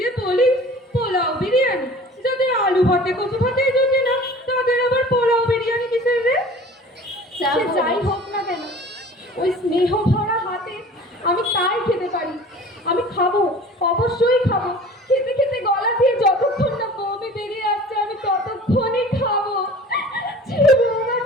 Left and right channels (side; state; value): both; normal; correlation 0.44